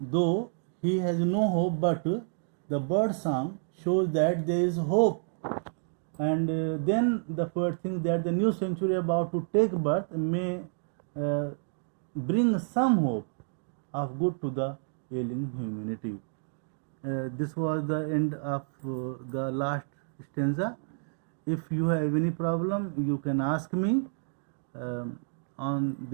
he has no hope, but the bird song shows that there is hope. And then the poet thinks that the new century about to take birth may bring some hope of good to the ailing humanity. This was the end of the last stanza. If you have any problem, you can ask me on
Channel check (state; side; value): silent; left; digital silence